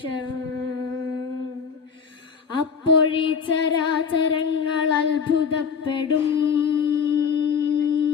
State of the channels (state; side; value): quieter; right; 6.3 dB